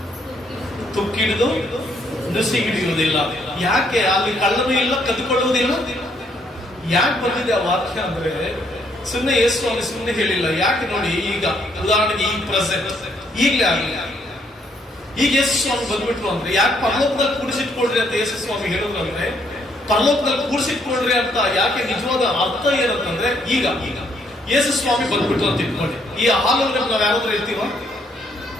ತುಕ್ಕಿಡಿದು ನುಸಿ ಹಿಡಿಯುವುದಿಲ್ಲ. ಯಾಕೆ? ಅಲ್ಲಿ ಕಳ್ಳನೂ ಇಲ್ಲ, ಕದ್ದುಕೊಳ್ಳುವುದಿಲ್ಲ. ಯಾಕೆ ಬಂದಿದೆ ಆ ವಾಕ್ಯ ಅಂದ್ರೆ, ಸುಮ್ಮನೆ ಯೇಸು ಸ್ವಾಮಿ ಸುಮ್ಮನೆ ಹೇಳಿಲ್ಲ. ಯಾಕೆ ನೋಡಿ, ಈಗ ಉದಾಹರಣೆಗೆ ಈ ಪ್ರೆಸೆಂಟ್ ಈಗಲೇ ಆಗಲಿ, ಈಗ ಯೇಸು ಸ್ವಾಮಿ ಬಂದ್ಬಿಟ್ರು ಅಂದ್ರೆ, ಯಾಕೆ ಪರಲೋಕದಲ್ಲಿ ಕೂಡಿಸಿಟ್ಕೊಳ್ರಿ ಅಂತ ಯೇಸು ಸ್ವಾಮಿ ಹೇಳಿದ್ರು ಅಂದ್ರೆ, ಪರಲೋಕದಲ್ಲಿ ಕೂಡಿಸಿಟ್ಕೊಳ್ರಿ ಅಂತ ಯಾಕೆ ನಿಜವಾದ ಅರ್ಥ ಏನಂತಂದ್ರೆ, ಈಗ ಯೇಸು ಸ್ವಾಮಿ ಬಂದ್ಬಿಟ್ರು ಅಂತ ಇಟ್ಕೊಳ್ಳಿ. ಈ ಹಾಲ್ ಒಳಗಡೆ ನಾವ್ ಯಾರಾದ್ರೂ ಇರ್ತೀವ?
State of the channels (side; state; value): both; normal; correlation 0.70